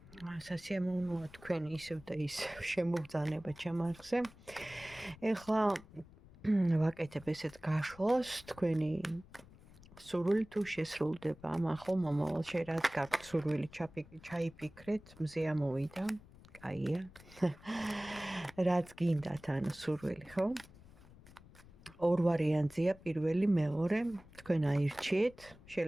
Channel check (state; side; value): noise; left; rumble, 22 dB below the sound